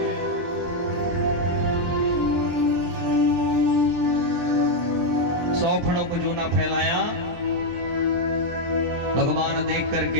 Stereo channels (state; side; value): late; left; 23 ms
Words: सौ फणों को जो ना फैलाया, भगवान देख